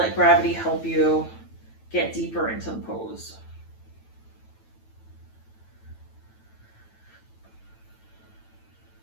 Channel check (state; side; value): late; right; 9.1 ms